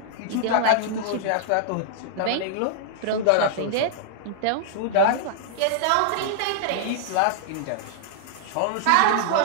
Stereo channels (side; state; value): both; different; correlation -0.01